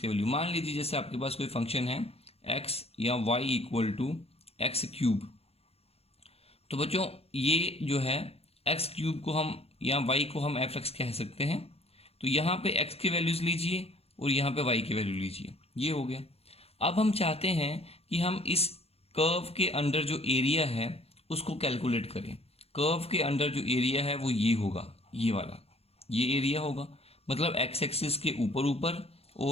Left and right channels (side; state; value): right; late; 0.29 ms